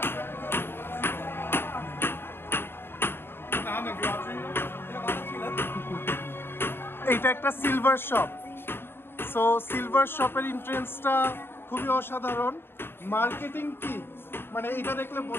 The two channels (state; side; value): late; right; 0.11 ms